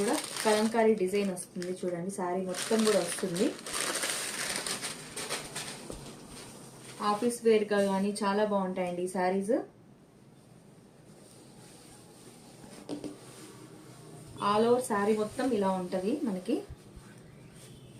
కలంకారీ డిజైన్ వస్తుంది చూడండి. శారీ మొత్తం కూడా వస్తుంది. ఆఫీస్ వేర్ గా కానీ చాలా బాగుంటాయండి ఈ శారీస్. ఆల్ ఓవర్ శారీ మొత్తం ఇలా ఉంటది మనకి.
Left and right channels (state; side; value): identical; both; correlation 1.00